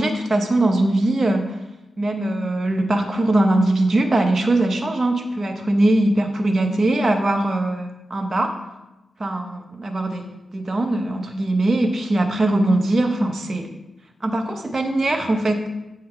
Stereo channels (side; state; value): both; normal; correlation 0.93